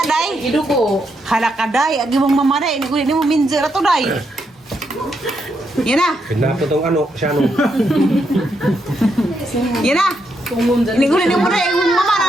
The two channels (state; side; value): normal; both; correlation 0.80